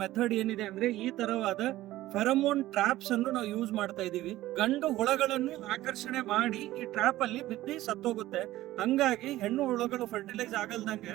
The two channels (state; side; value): quieter; left; 15.8 dB